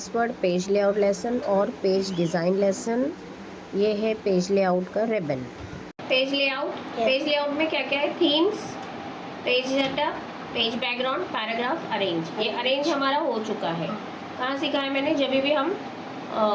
word page layout lesson और पेज डिज़ाइन लेसन। ये है पेज लेआउट का रिबन। पेज लेआउट में क्या क्या है? Themes, page setup, page background, paragraph, arrange. ये अरेंज हमारा हो चुका है। कहाँ सीखा है मैंने? जब भी हम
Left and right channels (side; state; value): both; identical; correlation 1.00